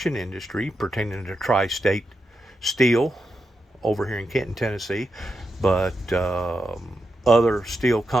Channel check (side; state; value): both; normal; correlation 0.86